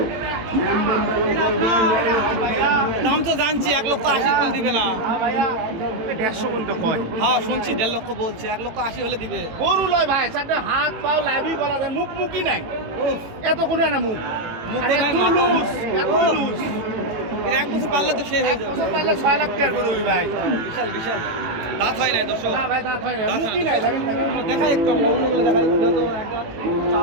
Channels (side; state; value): left; late; 18 ms